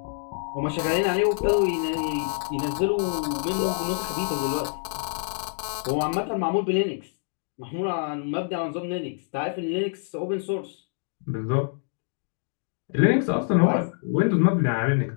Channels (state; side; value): silent; right; digital silence